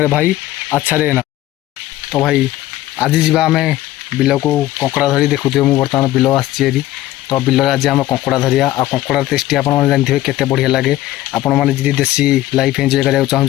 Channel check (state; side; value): quieter; right; 15.2 dB